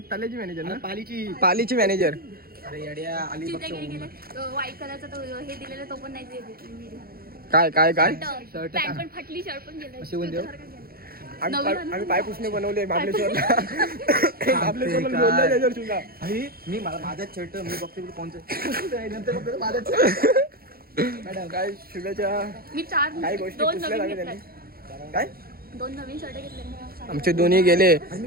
तलेची मॅनेजर ना पालीची मॅनेजर अरे येड्या अलिबागचं व्हाईट कलरचा तो हे दिलेला तो पण नाही दिलेला. काय काय काय पॅन्ट पण फाटली शर्ट पण गेलं अशी कोण देऊ? आम्ही पायपुसणे बनवले महाबळेश्वरला महाबळेश्वरला लोणलं त्याच्यावर सुद्धा मी माझाच शर्ट मी बघते कोणतं नंतर बघतो माझाच मॅडम काय शुभेच्छा मी चार काही गोष्टी दोन पुसल्या नवीन लागल्या घेतले त्यांनी काय दोन नवीन शर्ट घेतले आमचे दोन्ही गेले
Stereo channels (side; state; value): left; late; 0.44 ms